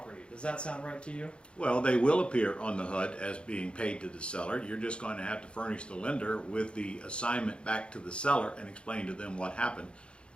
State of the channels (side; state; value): right; late; 0.056 ms